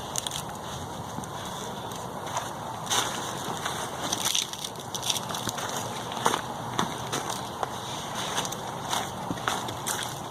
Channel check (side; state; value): both; identical; correlation 1.00